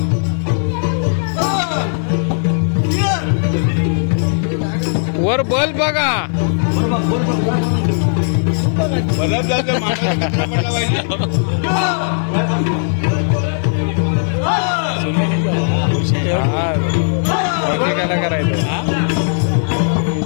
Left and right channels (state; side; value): silent; right; digital silence